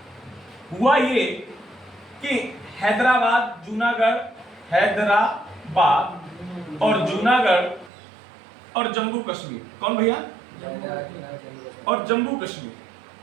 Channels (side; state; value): left; drops out; at 7.9 s